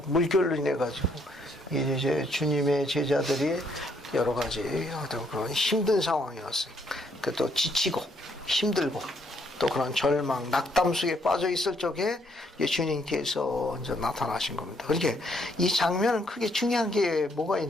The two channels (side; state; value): both; normal; correlation 0.71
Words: 물결로 인해 가지고 이제 주님의 제자들이 여러 가지 어떤 그런 힘든 상황이었어요. 그 또 지치고 힘들고 또 그런 절망, 낙담 속에 빠져 있을 적에 주님께서 이제 나타나신 겁니다. 그러니까 이 장면은 크게 중요한 게 뭐가